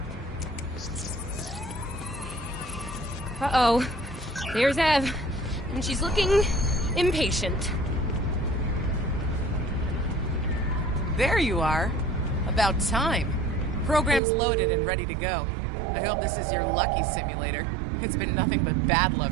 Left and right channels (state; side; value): drops out; left; at 14.2 s